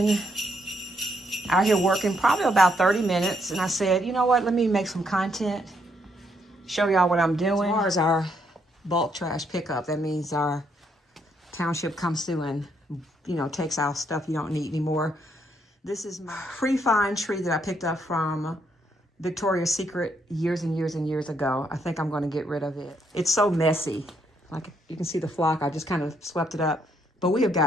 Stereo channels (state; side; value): normal; both; correlation 0.74